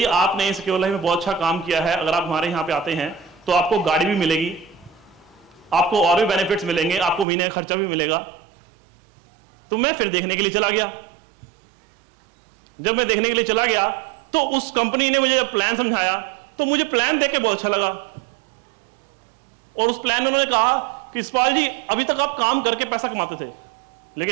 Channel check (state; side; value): drops out; left; at 7.2 s